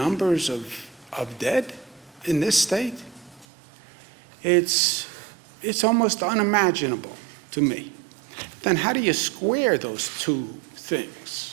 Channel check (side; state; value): left; drops out; at 3.5 s